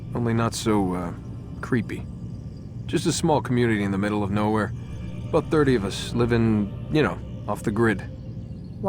Only not so, creepy. Just a small community in the middle of nowhere. About 30 of us, living, you know, off the grid.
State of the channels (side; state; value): both; identical; correlation 1.00